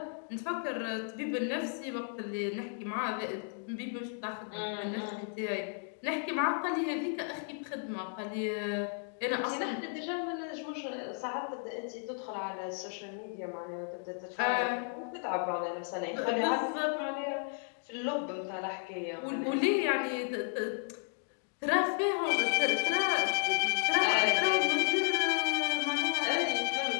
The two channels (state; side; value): silent; right; 55 dB below the other